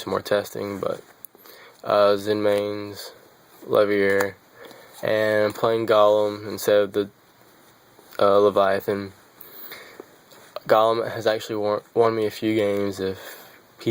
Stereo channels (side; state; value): both; identical; correlation 1.00